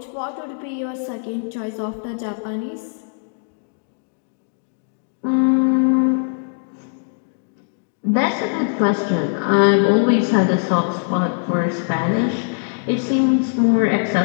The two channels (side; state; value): right; silent; digital silence